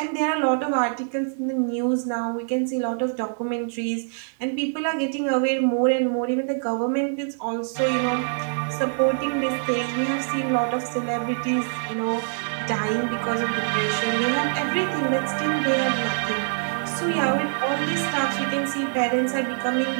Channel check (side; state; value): left; silent; digital silence